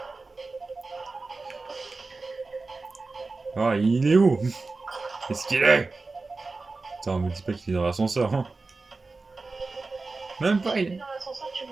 devant. Ah, il est où? Qu'est-ce qu'il est? Attends, me dis pas qu'il est dans l'ascenseur, hein. Même pas, il est... Dans l'ascenseur, tu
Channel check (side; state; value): left; quieter; 3.7 dB